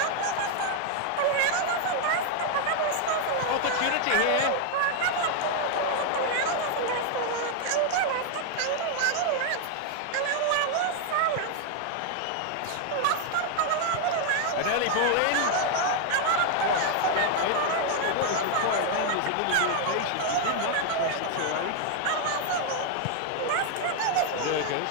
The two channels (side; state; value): both; different; correlation 0.00